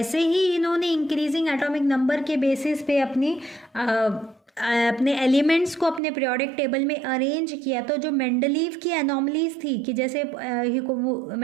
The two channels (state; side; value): drops out; left; at 6.0 s